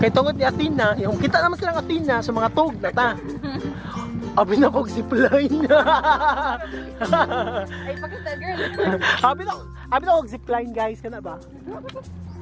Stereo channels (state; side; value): identical; both; correlation 1.00